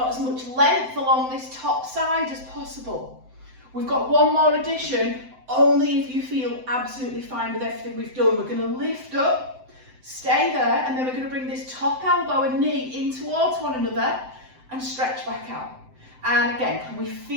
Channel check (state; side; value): late; left; 7.8 ms